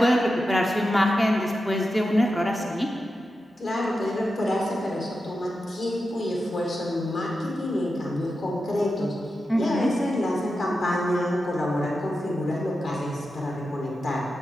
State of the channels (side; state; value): both; normal; correlation 0.90